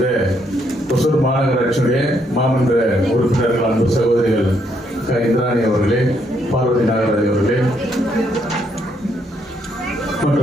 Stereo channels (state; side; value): normal; both; correlation 0.73